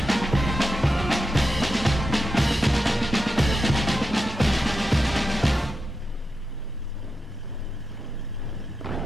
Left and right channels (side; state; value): both; normal; correlation 0.88